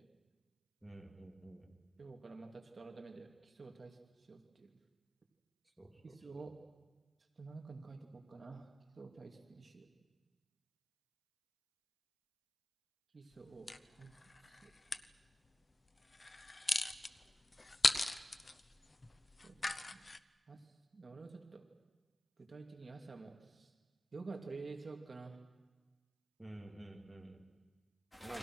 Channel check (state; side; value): normal; both; correlation 0.96